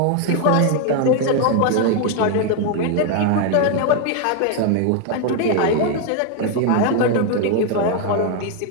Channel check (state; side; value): different; both; correlation 0.01